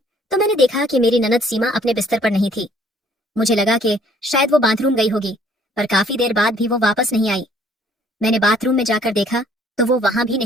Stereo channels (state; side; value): normal; both; correlation 0.60